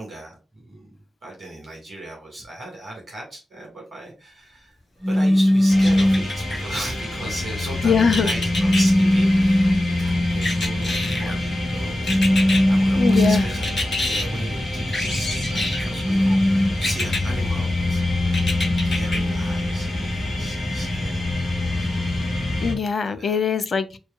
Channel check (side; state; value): both; normal; correlation 0.93